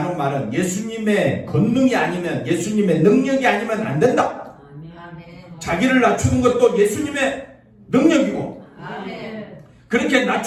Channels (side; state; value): both; identical; correlation 1.00